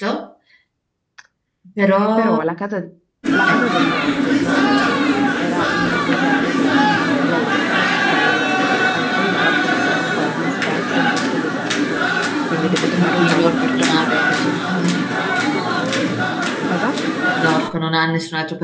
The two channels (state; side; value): identical; both; correlation 1.00